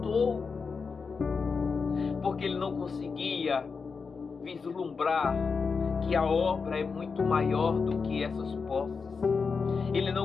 porque ele não conseguia vislumbrar que a obra é muito maior do que essas posses. Ele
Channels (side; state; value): right; quieter; 5.1 dB